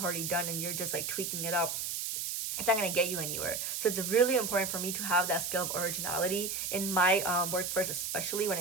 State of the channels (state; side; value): noise; right; hiss, 3 dB below the sound